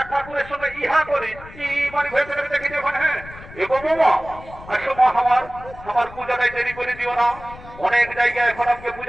ঠাকুরের সঙ্গে ইহা করি কি মানে ভেবে দেখি দেখো হ্যাঁ এগো বাবা আসো মা আমার পূজাটাই দেরি করে দিও না অনেক জায়গায় এখন আমাকে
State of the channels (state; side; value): noise; left; rumble, 17 dB below the sound